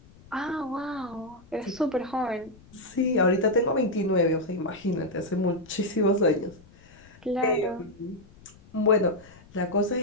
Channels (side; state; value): left; noise; rumble, 24 dB below the sound